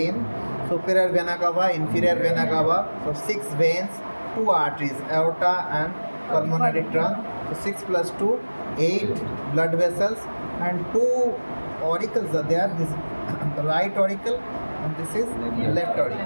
superior vena cava, inferior vena cava. So 6 veins, 2 arteries, aorta and pulmonary trunk. So 6 plus 2, 8 blood vessels, and 2 auricles are there. This is the right auricle and this is left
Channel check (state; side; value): inverted; both; correlation -1.00